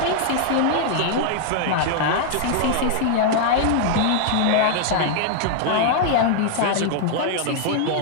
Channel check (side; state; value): both; different; correlation 0.00